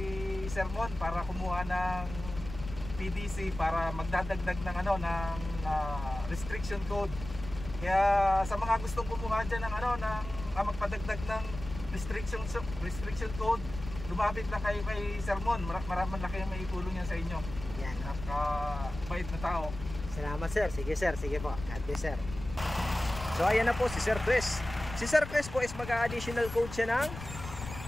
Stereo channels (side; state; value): left; noise; rumble, 10 dB below the sound